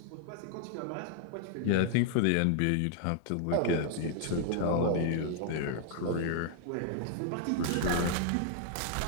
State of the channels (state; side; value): different; both; correlation 0.00